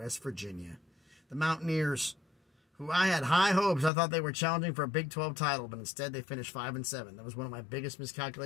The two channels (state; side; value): drops out; right; at 3.9 s